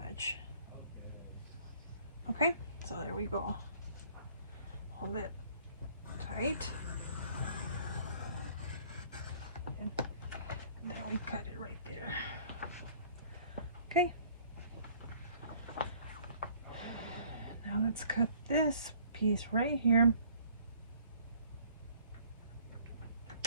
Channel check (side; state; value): both; inverted; correlation -0.57